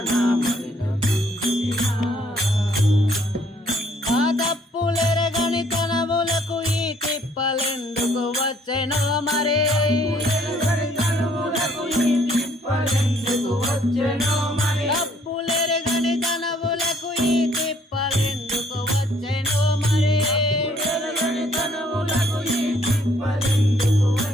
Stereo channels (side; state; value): both; normal; correlation 0.64